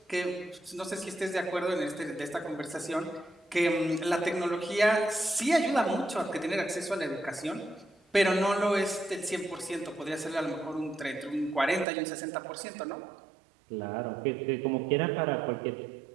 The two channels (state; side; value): drops out; left; at 11.9 s